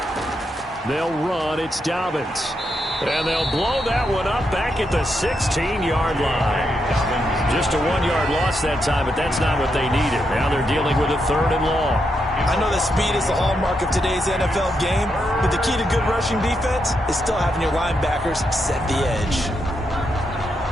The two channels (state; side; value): normal; both; correlation 0.82